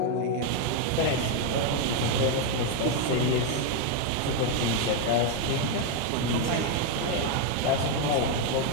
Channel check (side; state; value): both; different; correlation 0.01